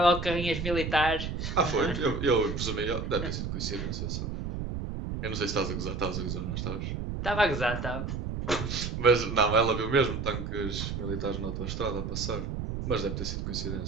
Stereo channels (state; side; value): noise; right; rumble, 4 dB below the sound